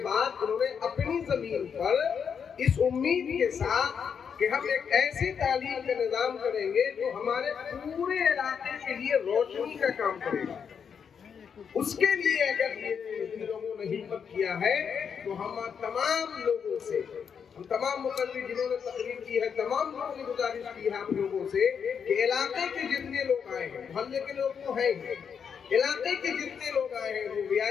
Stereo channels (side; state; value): right; quieter; 6.9 dB